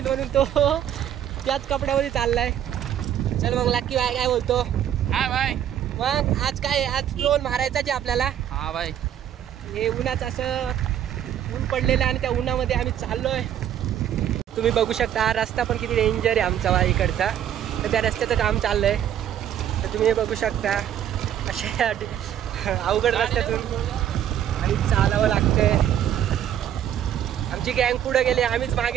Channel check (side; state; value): left; quieter; 10.4 dB